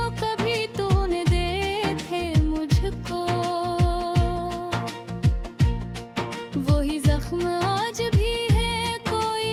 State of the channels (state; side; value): identical; both; correlation 1.00